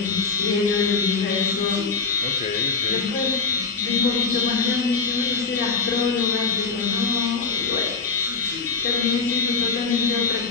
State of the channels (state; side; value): quieter; right; 4.7 dB